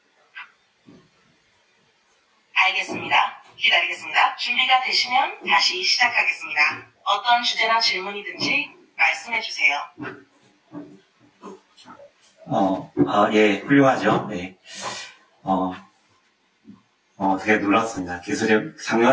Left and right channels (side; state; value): both; identical; correlation 1.00